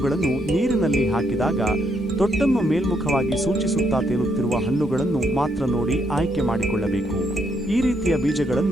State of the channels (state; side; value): normal; both; correlation 0.75